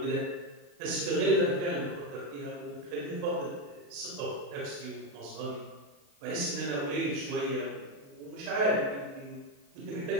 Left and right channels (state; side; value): late; left; 28 ms